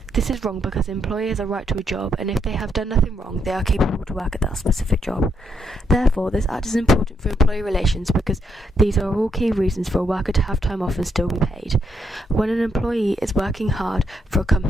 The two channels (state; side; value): normal; both; correlation 0.77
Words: This is wrong because employers have a right to a job, and if they have done nothing wrong, they are capable to work at that specific job. Therefore, this act is important for employee relations because these are all key reasons for a worker to have time off and still be paid. When an employee is working hard for a